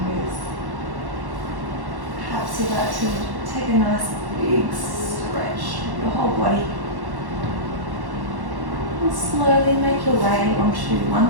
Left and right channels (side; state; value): left; late; 1.1 ms